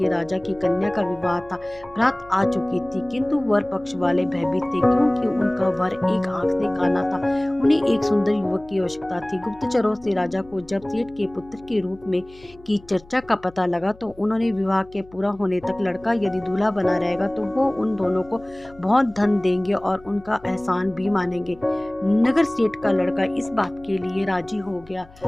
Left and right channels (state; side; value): noise; left; hum, 24 dB below the sound